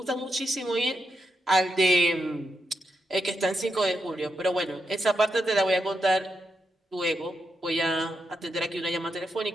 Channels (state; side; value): normal; both; correlation 0.84